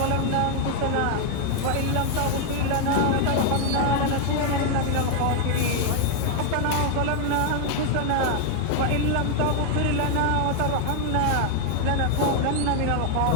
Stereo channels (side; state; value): both; different; correlation 0.00